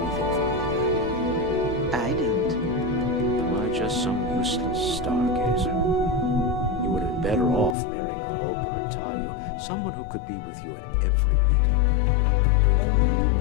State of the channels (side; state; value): right; drops out; at 7.8 s